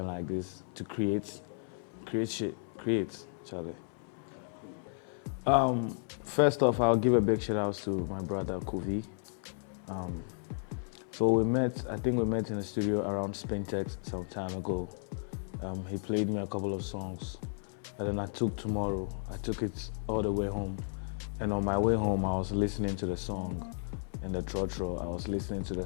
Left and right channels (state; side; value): silent; right; 55 dB below the other